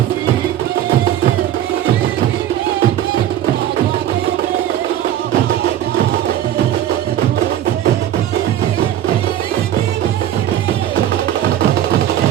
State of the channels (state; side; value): quieter; left; 11.7 dB